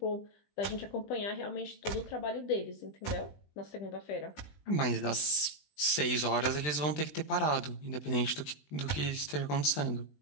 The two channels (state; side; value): late; right; 20 ms